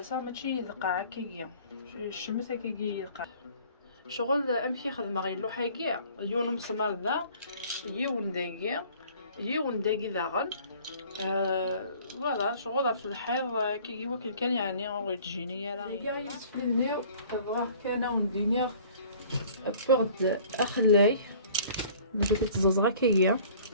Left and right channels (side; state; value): both; inverted; correlation -0.51